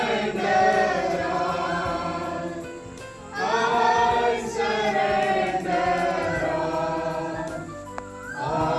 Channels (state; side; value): identical; both; correlation 1.00